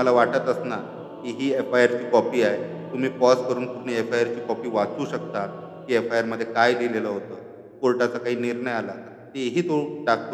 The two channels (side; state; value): both; identical; correlation 1.00